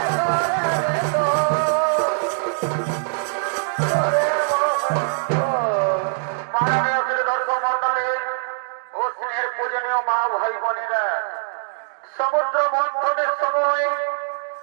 সমুদ্র মন্থনের সময়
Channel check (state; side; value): silent; left; digital silence